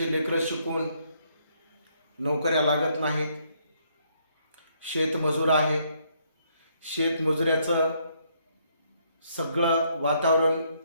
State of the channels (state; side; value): inverted; both; correlation -0.71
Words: लेकरं शिकून नोकऱ्या लागत नाहीत. शेतमजूर आहे. शेतमजुऱ्याचं सगळं वातावरण